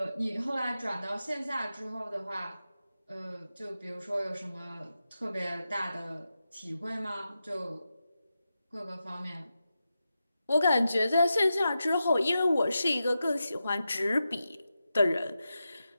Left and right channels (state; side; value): inverted; both; correlation -0.90